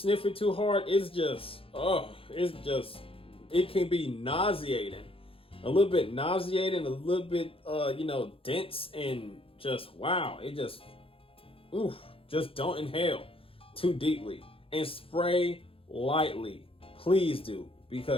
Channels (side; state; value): right; late; 0.27 ms